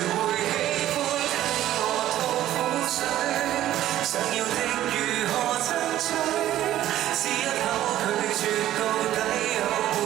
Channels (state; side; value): quieter; left; 13.2 dB